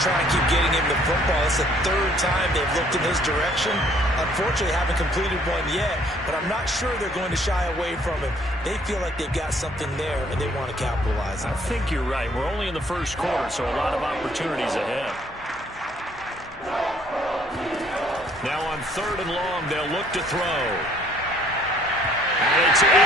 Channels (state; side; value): normal; both; correlation 0.61